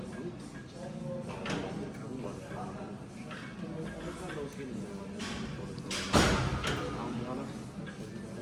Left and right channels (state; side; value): identical; both; correlation 1.00